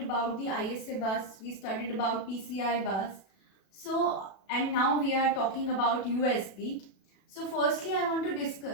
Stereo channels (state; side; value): late; right; 36 ms